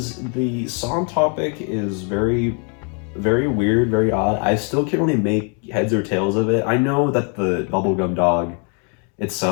the song topic is very, very weird, very odd. I still can't really make heads or tails of it. I know that the Bubblegum Dog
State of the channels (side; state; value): right; quieter; 38.3 dB